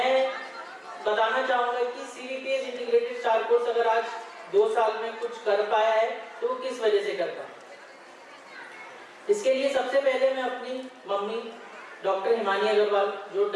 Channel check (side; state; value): both; identical; correlation 1.00